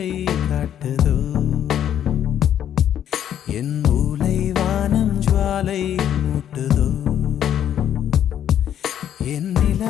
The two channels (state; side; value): quieter; right; 10.1 dB